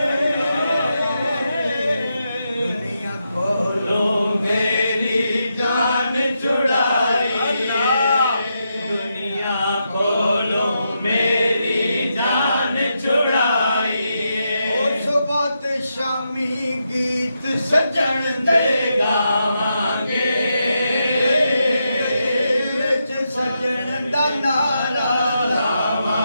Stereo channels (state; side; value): inverted; both; correlation -0.84